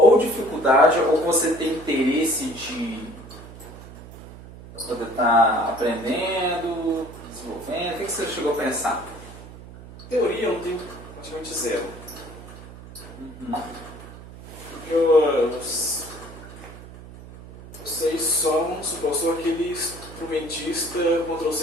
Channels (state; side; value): noise; right; hum, 16 dB below the sound